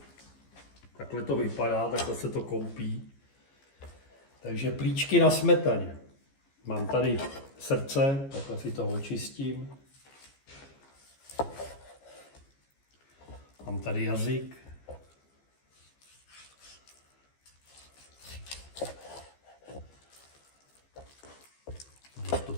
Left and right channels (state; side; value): late; right; 15 ms